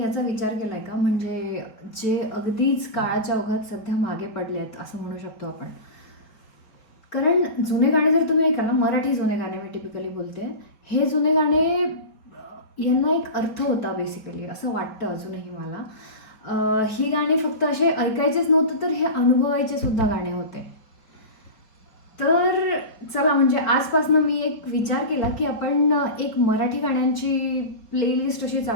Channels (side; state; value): right; late; 4.4 ms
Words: विचार केला आहे का? म्हणजे जे अगदीच काळाच्या ओघात सध्या मागे पडले आहेत असं म्हणू शकतो आपण. कारण जुने गाणे जर तुम्ही ऐकाल ना, मराठी जुने गाणे मी टिपिकली बोलते. हे जुने गाणे यांना एक अर्थ होता बेसिकली असं वाटतं अजूनही मला. ही गाणी फक्त असे ऐकायचेच नव्हतं तर हे अनुभवायचे सुद्धा गाणे होते. तर चला म्हणजे आजपासनं मी एक विचार केला की आपण एक मराठी गाण्यांची प्लेलिस्ट अशी